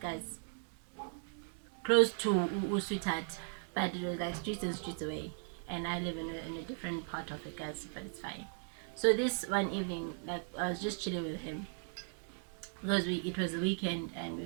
guys, close to Sweetheart, but it was like streets and streets away, and I live in a different part of it, guys, but it's fine. So this one evening, like, I was just chilling with him because it was a weekend,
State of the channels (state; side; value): silent; left; 53 dB below the other